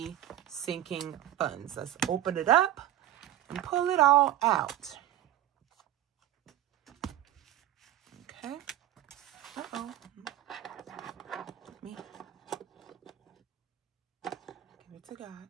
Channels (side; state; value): left; quieter; 12.9 dB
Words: sinking funds. Let's open it up and pull it all out. Okay. Uh-oh. Me. Give it to God.